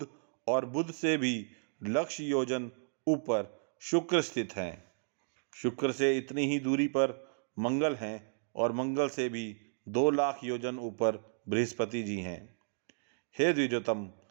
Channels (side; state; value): left; silent; digital silence